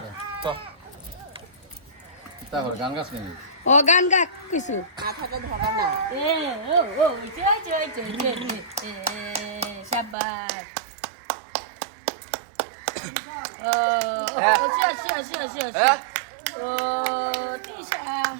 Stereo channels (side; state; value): left; drops out; at 10.2 s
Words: তো তারপর গান গাছ নেই ও গান গা কিছু মাথাটা ধরা না শাবাশ